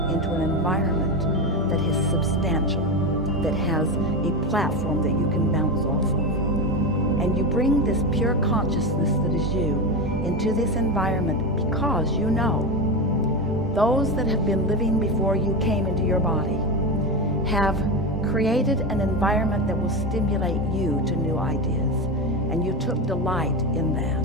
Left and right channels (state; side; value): normal; both; correlation 0.18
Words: into an environment that is substantial, that has a platform that you can bounce off of. And you bring this pure consciousness that is you into this environment because you know those that have been living before you came into your body have created an environment that will stimulate you to new ideas. And you took delight in that.